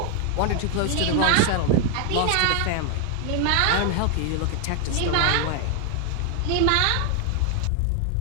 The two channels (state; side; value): different; both; correlation 0.00